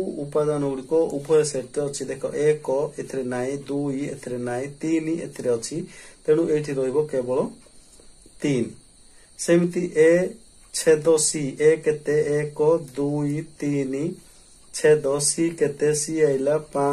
उपादान गुडी को उभय सेट अछि। देखो 1 एथरे नाही 2 एथरे नाही 3 एथरे अछि तेनु एठी रहइबो केवल 3 सेमिति ए छेद सी ए केते 1 2 3 छेद सी केते सी आइला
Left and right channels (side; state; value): both; identical; correlation 1.00